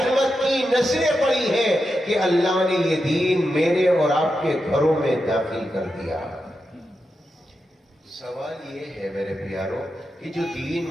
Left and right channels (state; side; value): normal; both; correlation 0.88